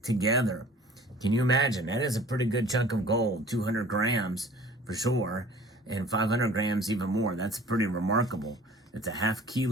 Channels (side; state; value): both; normal; correlation 0.48